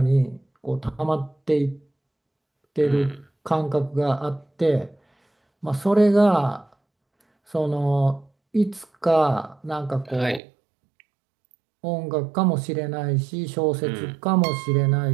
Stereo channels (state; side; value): drops out; left; at 10.4 s